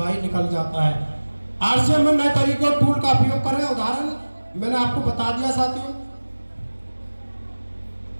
निकल जाता है। आरसीएम में नए तरीके और टूल का उपयोग करें। उदाहरण मैंने आपको बता दिया साथियों।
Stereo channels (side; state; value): both; inverted; correlation -1.00